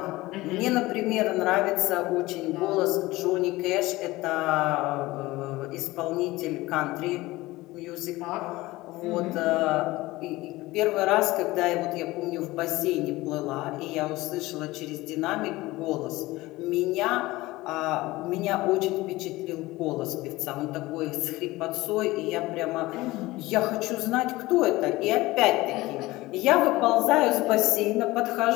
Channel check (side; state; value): right; quieter; 19.4 dB